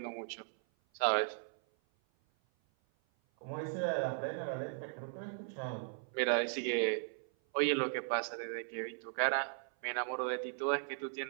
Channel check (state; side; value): silent; left; 53 dB below the other